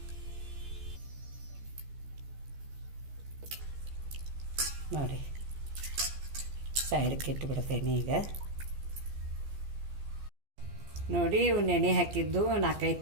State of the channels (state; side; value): late; left; 14 ms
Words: ನೋಡಿ, ಸೈಡ್ಗೆ ಇಟ್ಟುಬಿಡ್ತೇನೆ ಈಗ. ನೋಡಿ, ಇವು ನೆನೆ ಹಾಕಿದ್ದು 4-5